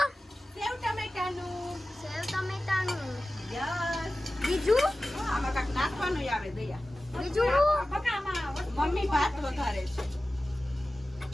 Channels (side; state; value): both; normal; correlation 0.96